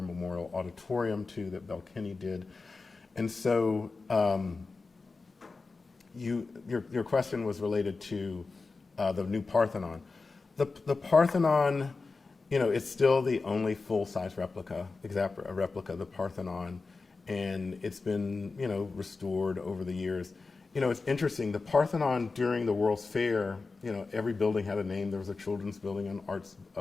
Memorial Auditorium, too, that Belle Kinney did. And so your question was related to the new Parthenon. The Parthenon, it's still the only full-size replica of the Parthenon, and it's been, restored over the years. It's interesting, the Parthenon during the World's Fair, every building had a name. There was a children's building,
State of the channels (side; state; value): right; quieter; 4.0 dB